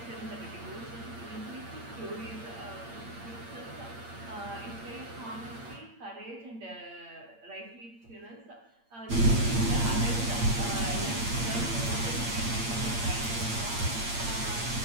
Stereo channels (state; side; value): late; left; 8.7 ms